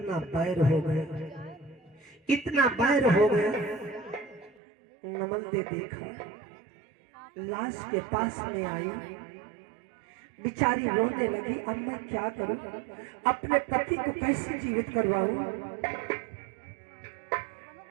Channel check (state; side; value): drops out; left; at 4.6 s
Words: बैर हो गया, इतना बैर हो गया। नमन ने देखा, लाश के पास में आई, बेचारी रोने लगी। अब मैं क्या करूं, अपने पति को कैसे जीवित करवाऊं।